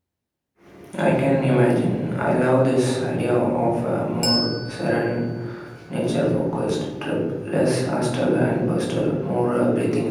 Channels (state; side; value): identical; both; correlation 1.00